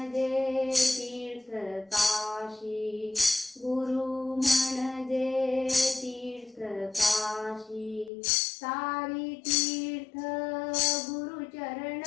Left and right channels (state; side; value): drops out; right; at 8.1 s